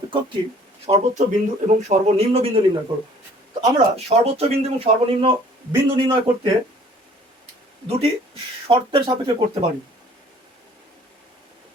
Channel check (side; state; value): both; normal; correlation 0.54